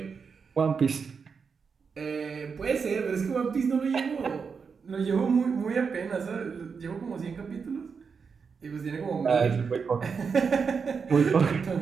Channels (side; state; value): left; quieter; 5.7 dB